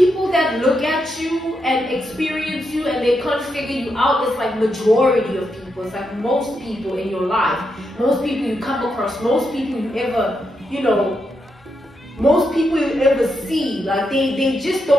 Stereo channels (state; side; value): normal; both; correlation 0.83